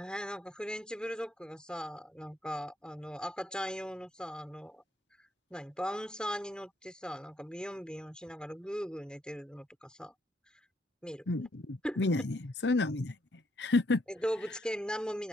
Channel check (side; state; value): both; normal; correlation 0.73